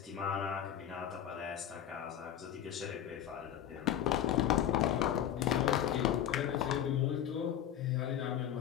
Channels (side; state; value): right; quieter; 10.5 dB